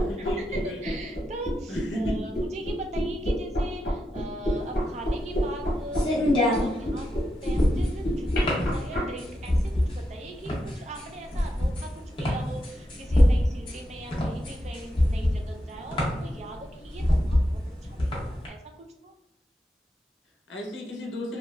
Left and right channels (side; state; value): both; normal; correlation 0.85